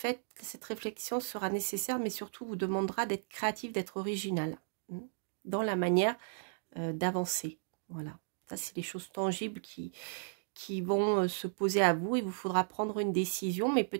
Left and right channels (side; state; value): left; silent; digital silence